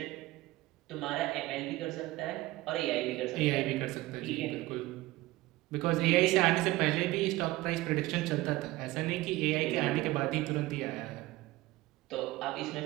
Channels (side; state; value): left; quieter; 18.8 dB